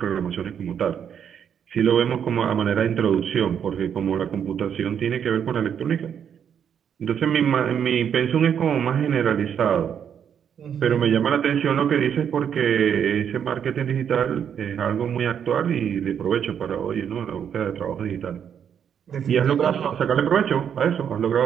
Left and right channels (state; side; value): quieter; left; 8.3 dB